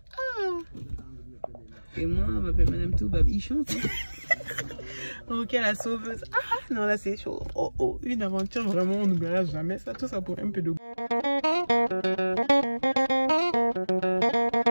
Et moi on m'appelle Madame Toubabichon. Ok la sauveuse. Ah non là c'est chaud. Oh, une aventure vraiment on n'oubliera jamais ça, tout ça pour un peu de goût.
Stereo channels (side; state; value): both; inverted; correlation -1.00